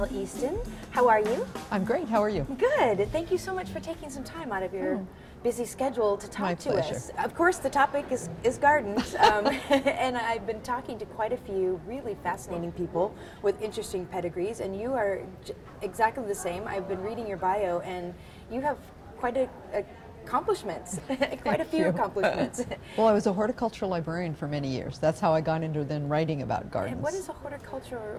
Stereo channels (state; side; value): identical; both; correlation 1.00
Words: Easton. How are you? I'm great. How are you? Good. Thank you so much for taking some time out of your busy schedule to talk to pleasure. us. Of course, the topic is gardens, and I've been talking to quite a few really fascinating people with interesting pedigrees, and you are exactly the same. I've been reading your bio, and you have quite accomplishments, quite a few accomplishments. Well, I was a horticultural librarian for many years. That's how I got into then writing about gardens. And what is a horticultural